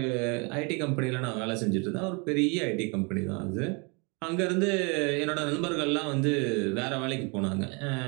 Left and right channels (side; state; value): left; quieter; 31.9 dB